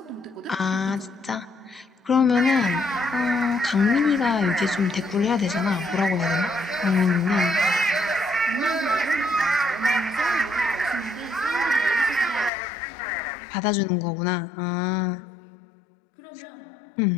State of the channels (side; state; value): right; drops out; at 12.5 s